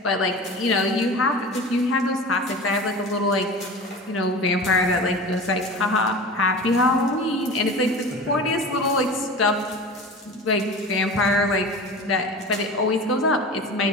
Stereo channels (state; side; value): normal; both; correlation 0.33